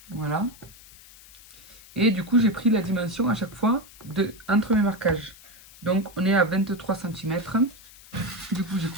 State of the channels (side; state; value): left; noise; hiss, 22 dB below the sound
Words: Voilà. Et du coup, j'ai pris la dimension à chaque fois entre mes marquages. Donc, on est à 23 cm. Du coup, j'ai